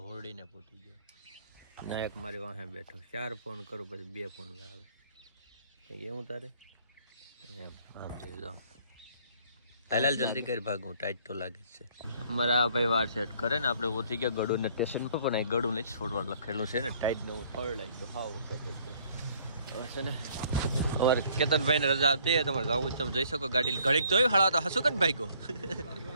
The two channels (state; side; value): inverted; both; correlation -0.60